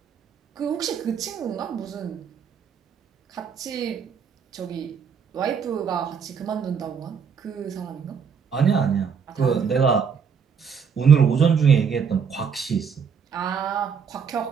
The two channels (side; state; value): left; quieter; 6.6 dB